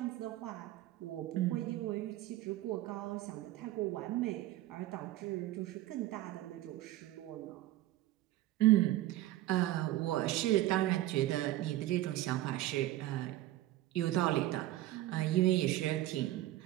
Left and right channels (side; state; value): left; quieter; 15.4 dB